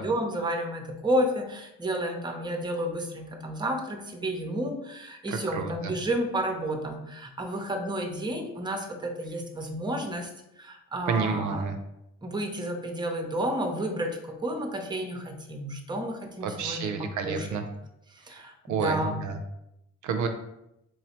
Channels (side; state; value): both; normal; correlation 0.42